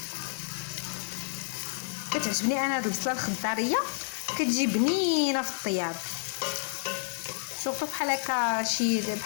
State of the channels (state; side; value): silent; right; digital silence